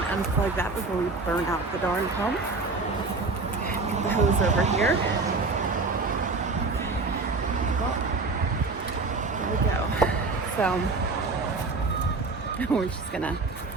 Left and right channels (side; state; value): left; quieter; 3.7 dB